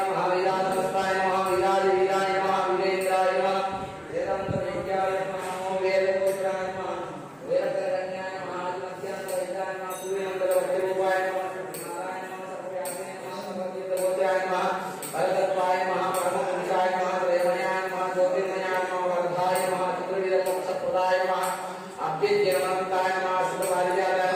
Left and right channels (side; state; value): both; identical; correlation 1.00